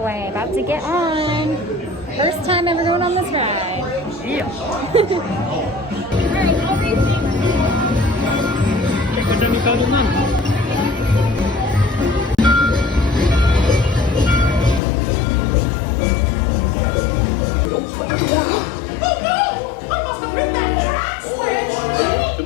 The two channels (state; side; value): drops out; right; at 14.8 s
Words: about to get on. First time ever going on this ride. Yeah.